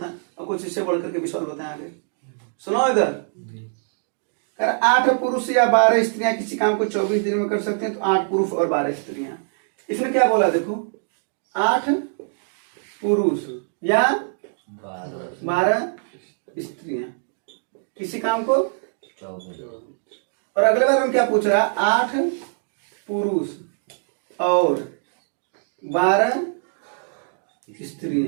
और कुछ इससे बढ़ करके भी सवाल बताएं आगे। सुनो इधर, कर 8 पुरुष या 12 स्त्रियां किसी काम को 24 दिन में कर सकते हैं, तो 8 पुरुष और 12 स्त्रियां। इसने क्या बोला? देखो 8 पुरुष या 12 स्त्रियां किसी काम को, और अगले बार हम क्या पूछ रहा है? 8 पुरुष और 12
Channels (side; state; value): left; silent; digital silence